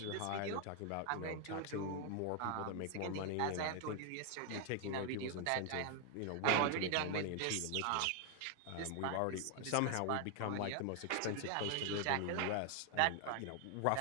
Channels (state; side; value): different; both; correlation 0.00